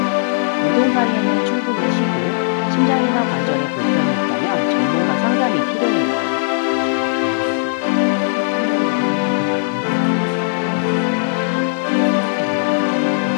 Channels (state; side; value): silent; right; digital silence